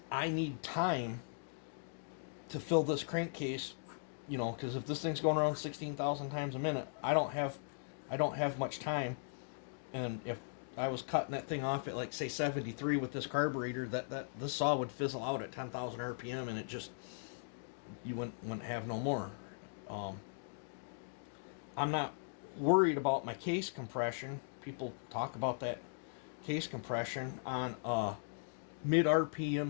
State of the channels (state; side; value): silent; right; digital silence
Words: I need time to fill this crankcase, you know, because if this thing's going around 16,000 times a minute, I don't have much time. And if I was cutting that thing off at, like, say 73 with this carburetor, this saw would fizzle out at 10,000 RPM, and it just, you wouldn't have no more. I'm not worried about my case compression. People talk about that case compression on a mid